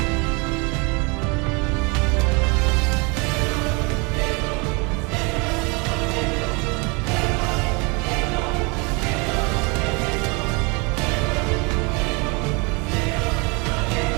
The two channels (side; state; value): left; quieter; 29.9 dB